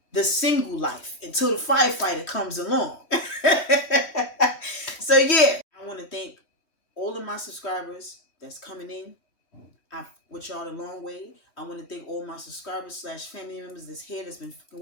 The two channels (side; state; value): right; late; 3.1 ms